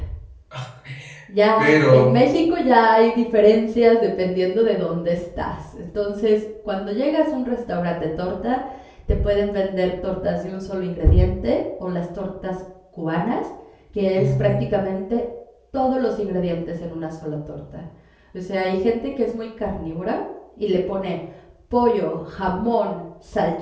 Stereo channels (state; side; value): identical; both; correlation 1.00